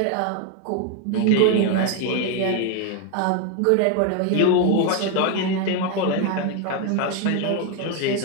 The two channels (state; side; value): different; both; correlation 0.01